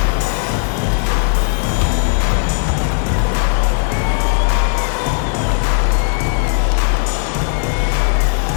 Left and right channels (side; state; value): right; silent; digital silence